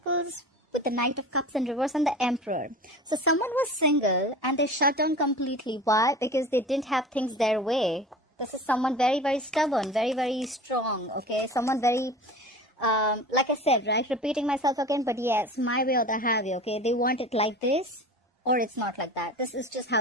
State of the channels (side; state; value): both; normal; correlation 0.36